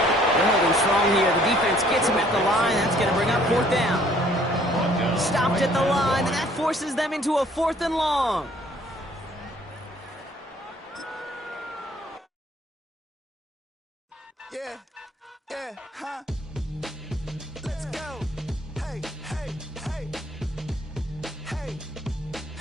holding strong here. The defense gets him at the line. That's going to bring up 4th down. Stopped at the line, and that forces them into a 4th and long. Yeah, huh?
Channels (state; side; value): normal; both; correlation 0.59